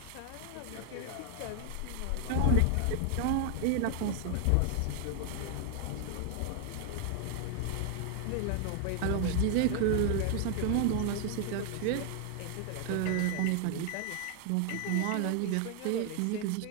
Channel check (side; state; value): both; different; correlation 0.00